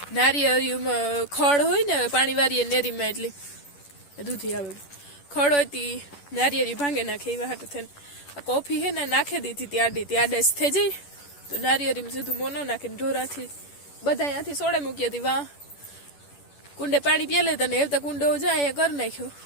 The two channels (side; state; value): right; late; 10 ms